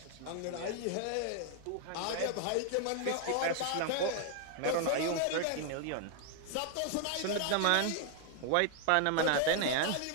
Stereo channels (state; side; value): different; both; correlation 0.00